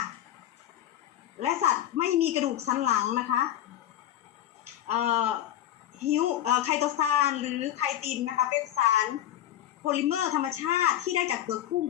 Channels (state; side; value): quieter; right; 12.0 dB